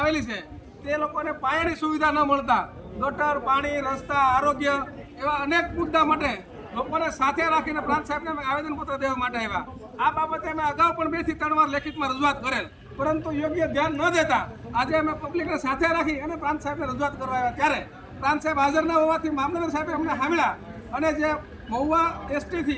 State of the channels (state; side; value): identical; both; correlation 1.00